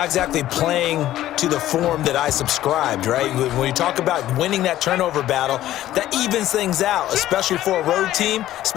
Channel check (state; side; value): quieter; right; 13.7 dB